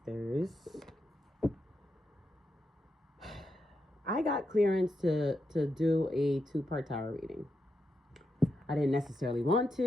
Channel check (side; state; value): both; normal; correlation 0.85